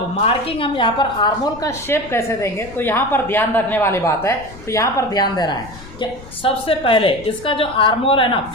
मार्किंग हम यहाँ पर आर्मोल का शेप कैसे देंगे तो यहाँ पर ध्यान रखने वाली बात है। तो यहाँ पर ध्यान देना है कि सबसे पहले इसका जो आर्मोल है ना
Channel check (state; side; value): noise; left; rumble, 18 dB below the sound